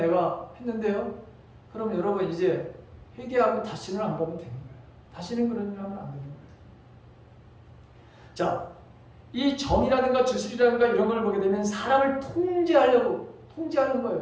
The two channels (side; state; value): both; identical; correlation 1.00